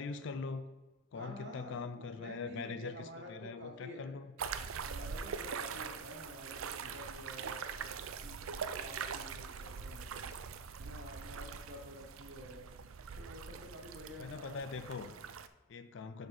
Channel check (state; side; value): normal; both; correlation 0.12